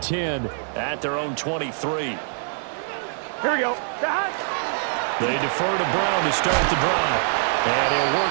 10 at their own 23. Here we go. They defer to Brown to start the drive. And he'll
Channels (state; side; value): silent; left; digital silence